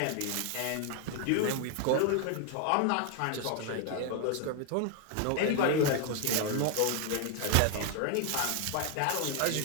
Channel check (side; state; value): both; different; correlation 0.00